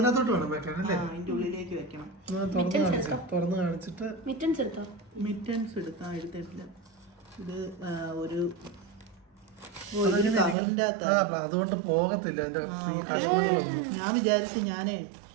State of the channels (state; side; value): drops out; left; at 10.6 s